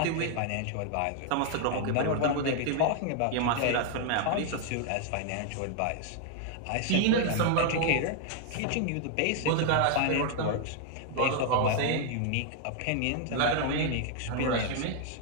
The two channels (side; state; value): both; different; correlation 0.00